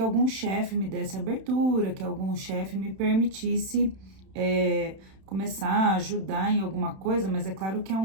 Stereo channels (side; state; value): left; late; 31 ms